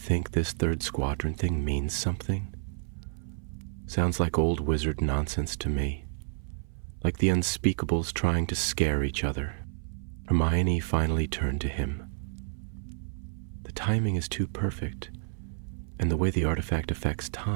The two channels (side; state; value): left; silent; 58 dB below the other